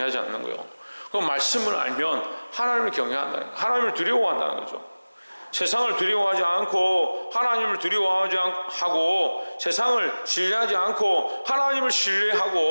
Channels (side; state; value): both; inverted; correlation -1.00